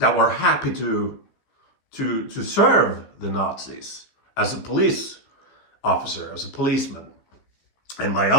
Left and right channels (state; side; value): late; right; 15 ms